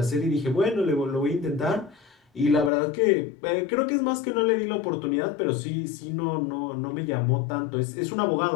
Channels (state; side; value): drops out; right; at 2.7 s